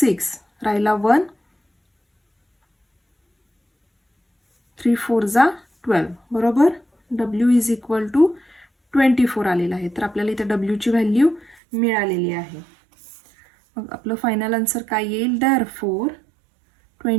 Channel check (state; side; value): drops out; left; at 11.6 s